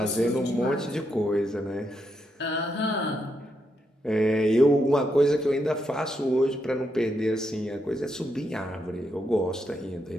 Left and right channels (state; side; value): normal; both; correlation 0.81